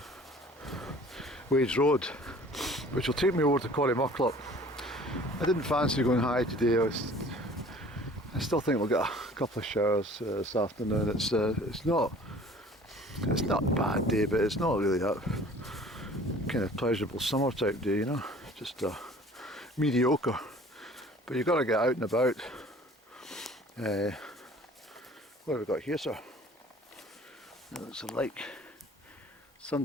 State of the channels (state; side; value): normal; both; correlation 0.49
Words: Wades Road, which will take me over to Corrymucklop. I didn't fancy going high today. I still think we'll get a couple of showers this afternoon. It's not a bad day, but it's not really that kind of pleasurable summer type day, you know. Just mediocre. But you've got to get out and about. What have we got here, sir? It looks like